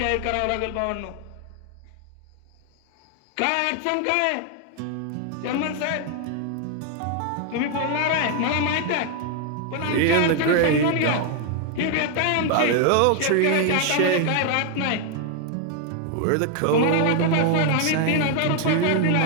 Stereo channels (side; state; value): both; different; correlation 0.00